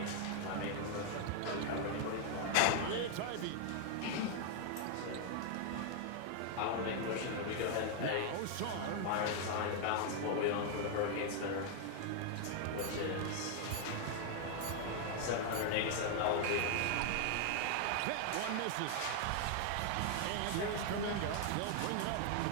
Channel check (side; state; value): both; different; correlation 0.00